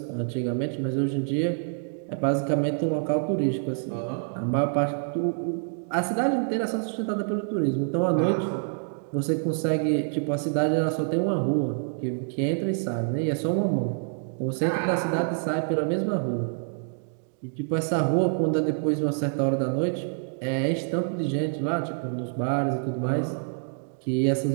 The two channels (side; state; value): left; silent; digital silence